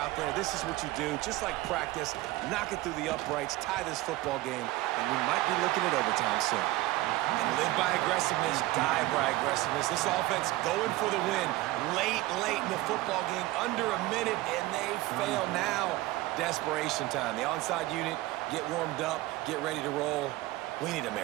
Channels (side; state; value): left; quieter; 18.2 dB